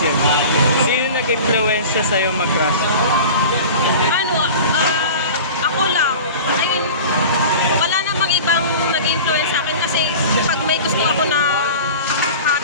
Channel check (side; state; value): both; inverted; correlation -0.36